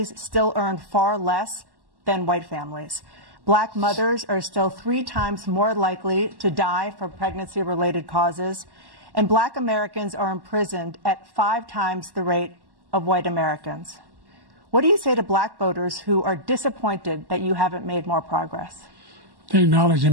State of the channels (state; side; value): late; left; 1.1 ms